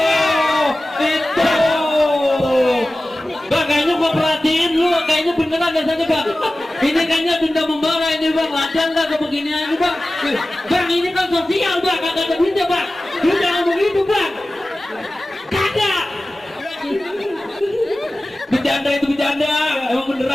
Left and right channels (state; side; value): normal; both; correlation 0.96